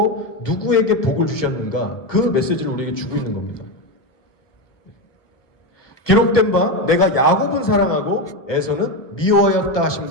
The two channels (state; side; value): late; right; 1.3 ms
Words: 누구에게 복을 주셨는가, 그 메시지를 우리에게 주고 있는 겁니다. 기록된 바 내가 야곱은 사랑하고 에서는 미워하였다